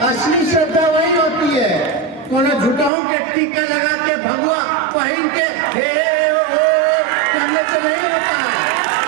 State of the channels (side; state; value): left; drops out; at 2.9 s